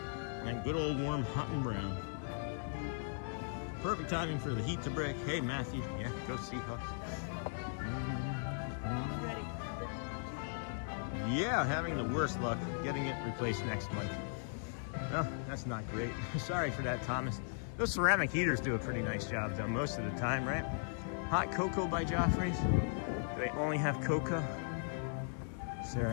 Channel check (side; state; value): right; silent; digital silence